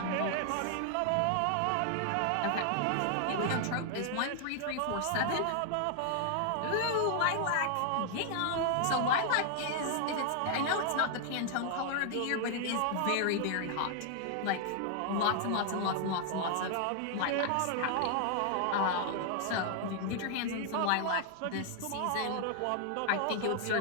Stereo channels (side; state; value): both; different; correlation 0.00